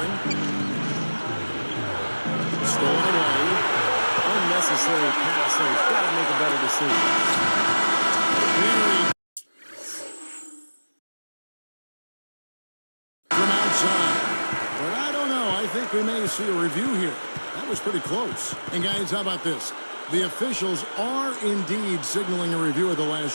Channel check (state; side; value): inverted; both; correlation -1.00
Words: Stolen away. Unnecessary pass there. He's got to make a better decision. From outside. But I don't know. I think we may see a review here. That was pretty close. And guys, how about this? The officials are indeed signaling a review of the